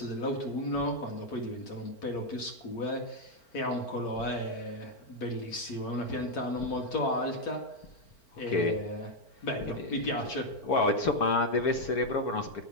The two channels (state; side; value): late; right; 4.4 ms